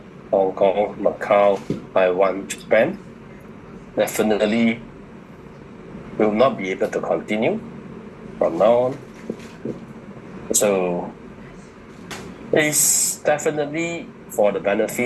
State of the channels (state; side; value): identical; both; correlation 1.00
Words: Hong Kong, Macau, Taiwan, Japan definitely will not be able to continue from now on. So it's definitely for the